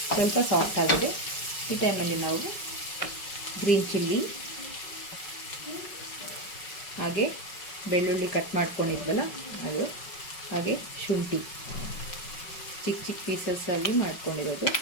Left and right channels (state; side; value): late; right; 5.4 ms